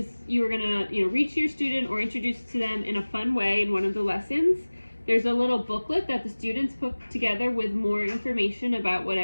gonna read to your student or introduce to them in a fun way in one of the lessons. There's a little booklet that the students put together with more information about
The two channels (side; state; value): both; inverted; correlation -1.00